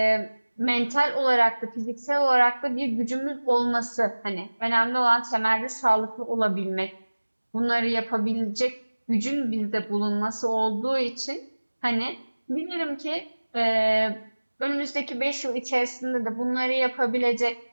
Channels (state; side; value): inverted; both; correlation -1.00